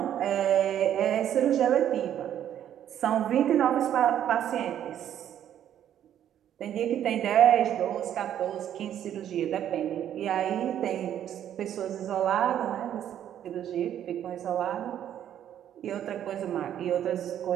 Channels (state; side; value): quieter; left; 10.5 dB